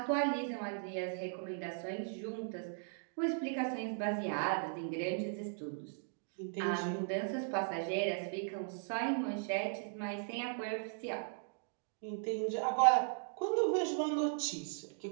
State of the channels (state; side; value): silent; left; digital silence